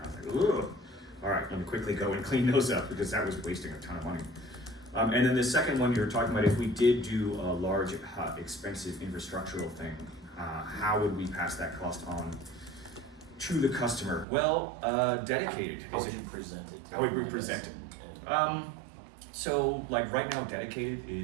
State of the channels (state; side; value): drops out; left; at 14.2 s